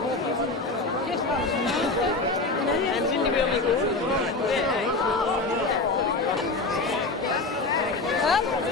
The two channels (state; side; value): quieter; right; 3.4 dB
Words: En zien die weer met